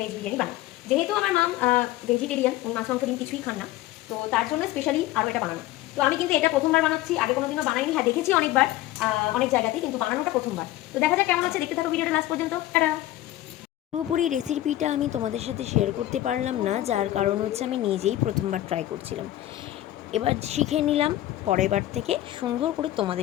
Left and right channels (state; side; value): quieter; right; 15.0 dB